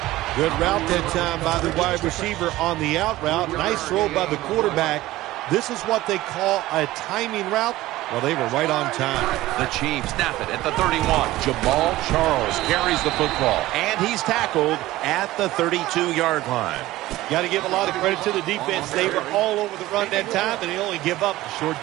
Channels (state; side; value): quieter; left; 16.8 dB